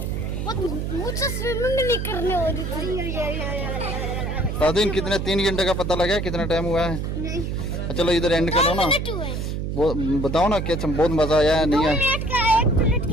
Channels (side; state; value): right; noise; hum, 3 dB below the sound